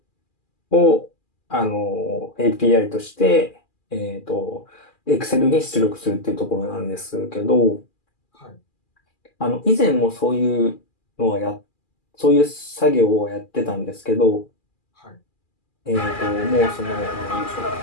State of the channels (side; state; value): right; late; 2.4 ms